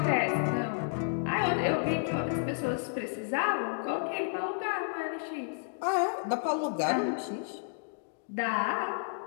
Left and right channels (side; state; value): right; silent; digital silence